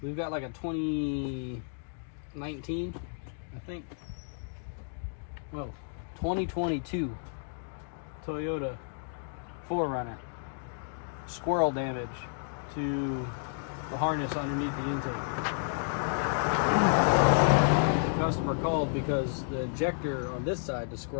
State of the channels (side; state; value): right; silent; digital silence